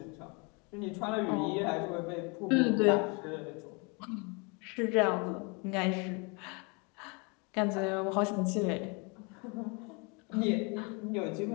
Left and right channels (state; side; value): quieter; right; 31.5 dB